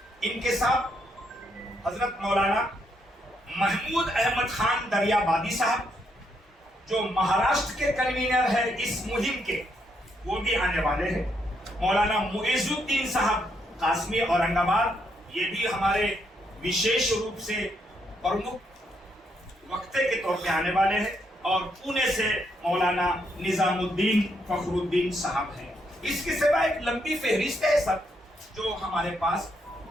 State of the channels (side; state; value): both; normal; correlation 0.76